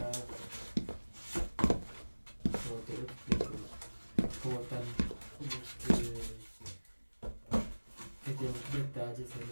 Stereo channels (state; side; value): inverted; both; correlation -1.00